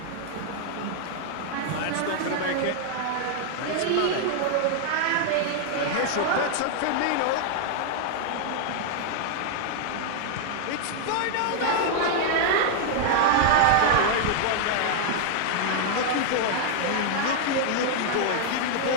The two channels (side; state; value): both; different; correlation -0.01